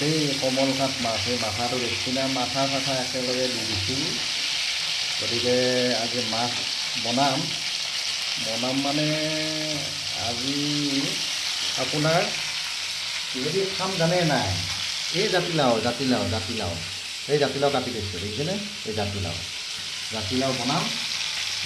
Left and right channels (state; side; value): identical; both; correlation 1.00